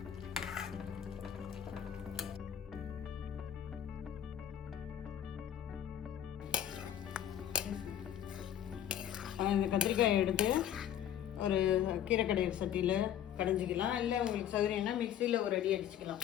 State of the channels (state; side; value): quieter; right; 10.4 dB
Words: இந்த கத்திரிக்காயை எடுத்து ஒரு கீரை கடையிற சட்டியில் கடைஞ்சிக்கலாம். இல்லை உங்களுக்கு சௌகரியம்னா மிக்சியில் ஒரு அடி அடிச்சுக்கலாம்.